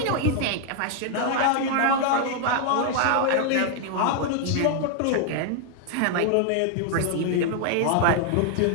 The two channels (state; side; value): different; both; correlation 0.00